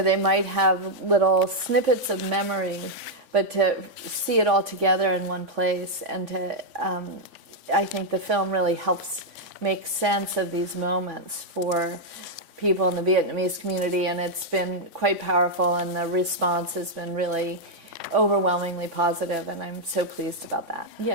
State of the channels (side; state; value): left; late; 3.5 ms